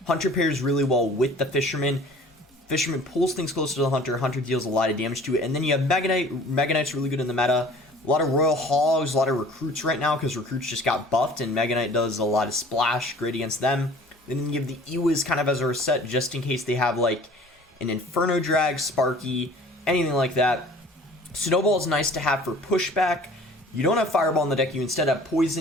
Hunter pairs really well with the Fisherman. Fisherman pulls things closer to the Hunter. Hunter deals a lot of damage to it. And then you have Mega Knight. Mega Knight's really good in the meta. A lot of Royal Hogs, a lot of Recruits right now because Recruits just got buffed and Mega Knight does a lot of splash, great against them. Then you have the Ewas kind of as a reset just in case they have like an Inferno Drag, Sparky, anything like that. Snowball is nice to have for pushback. You don't have Fireball in the deck, you instead have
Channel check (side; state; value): both; normal; correlation 0.48